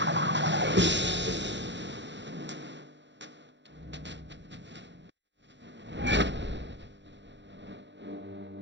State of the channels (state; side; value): late; left; 0.52 ms